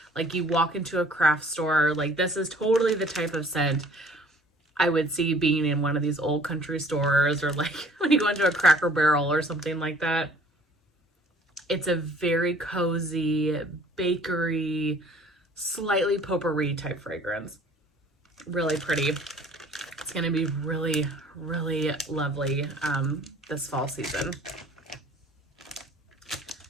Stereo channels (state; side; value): normal; both; correlation 0.53